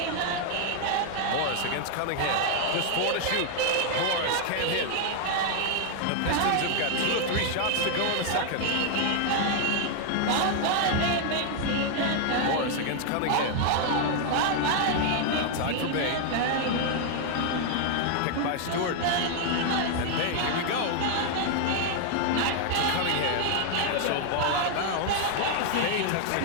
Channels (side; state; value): both; different; correlation 0.00